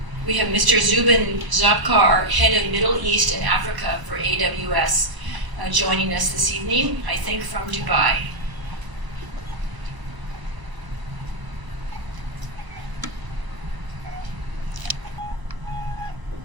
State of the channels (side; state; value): left; late; 1.0 ms